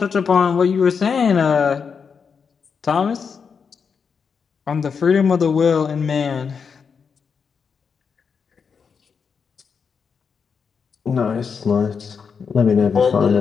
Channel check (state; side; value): quieter; right; 6.0 dB